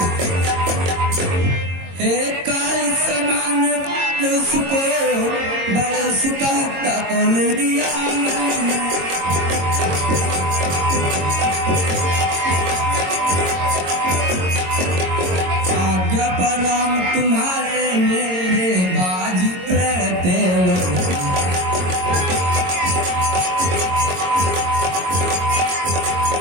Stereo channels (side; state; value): left; late; 22 ms